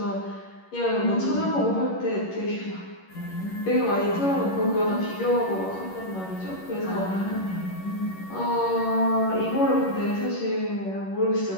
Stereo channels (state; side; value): late; right; 11 ms